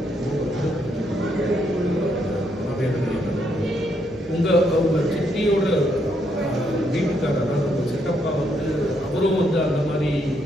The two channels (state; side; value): normal; both; correlation 0.75